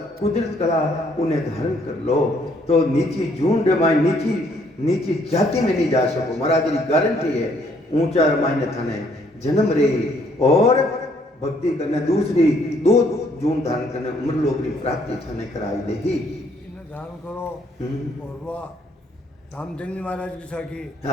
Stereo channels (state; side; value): normal; both; correlation 0.66